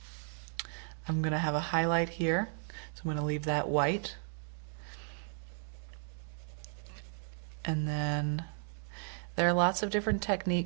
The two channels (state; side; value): silent; left; 55 dB below the other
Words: I'm going to have a highlight here. So I'm going to leave that white. And then there are lots of different